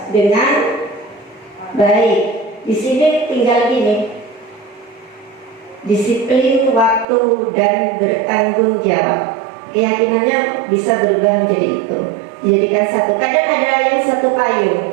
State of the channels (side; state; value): left; drops out; at 7.1 s